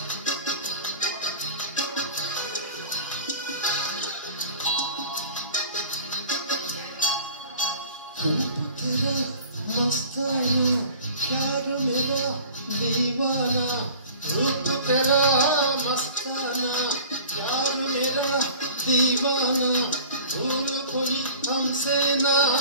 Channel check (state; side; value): inverted; both; correlation -0.43